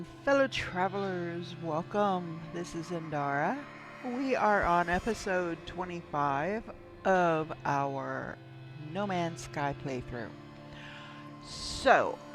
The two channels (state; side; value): identical; both; correlation 1.00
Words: fellow travelers. Welcome. This is Indara. We are on episode 25 of our No Man's Sky playthrough. So,